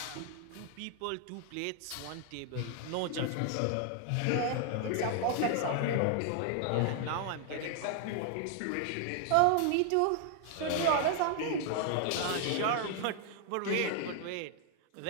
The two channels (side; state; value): both; different; correlation 0.00